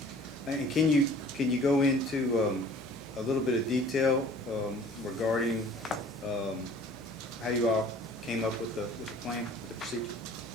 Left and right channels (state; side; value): normal; both; correlation 0.50